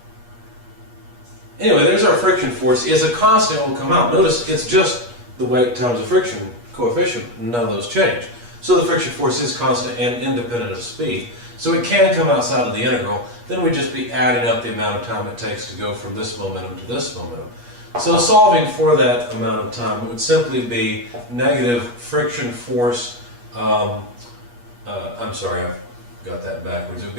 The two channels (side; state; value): left; late; 8.4 ms